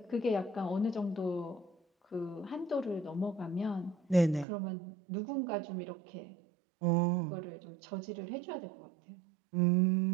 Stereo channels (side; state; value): left; drops out; at 4.5 s